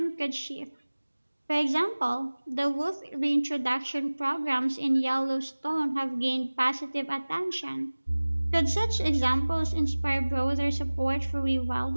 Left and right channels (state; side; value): inverted; both; correlation -1.00